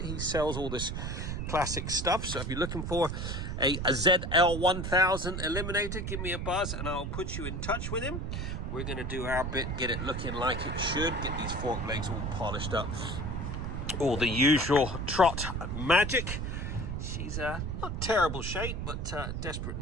He sells all this classic stuff, so if you're looking for a ZL1000 Eliminator, give me a buzz and I'll put you in touch with him. We're going to do our bit, get it looking like it should, get these fork legs all polished up, all the usual trot magic. She's not terrible shape, but desperate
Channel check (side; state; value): right; noise; rumble, 3 dB below the sound